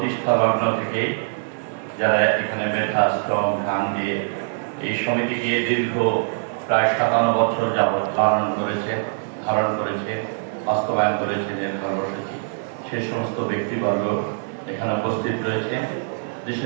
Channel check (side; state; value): left; silent; digital silence